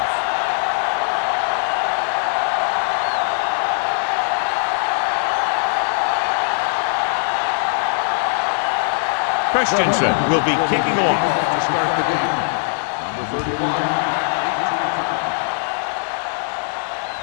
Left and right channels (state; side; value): silent; right; 66 dB below the other